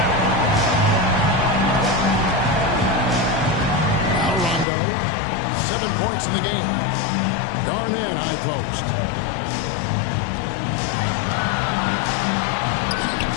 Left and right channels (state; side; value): drops out; right; at 4.7 s